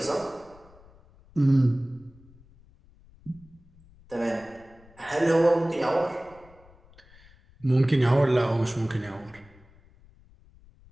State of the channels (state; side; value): noise; left; rumble, 26 dB below the sound